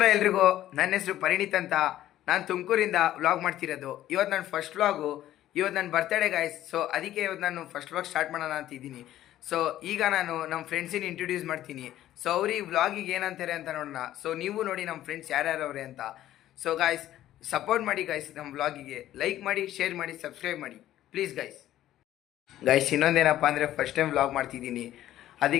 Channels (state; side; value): quieter; right; 13.2 dB